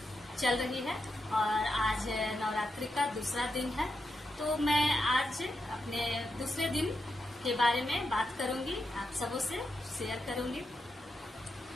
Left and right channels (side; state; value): both; normal; correlation 0.85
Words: चल रही है और आज नवरात्रि का दूसरा दिन है। तो मैं आज अपने दूसरे दिन के बारे में बात करूंगी, आप सबों से शेयर करूंगी।